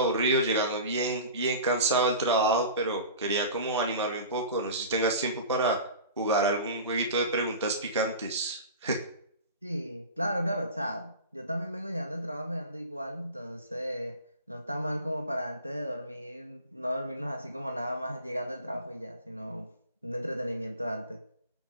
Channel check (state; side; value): inverted; both; correlation -0.34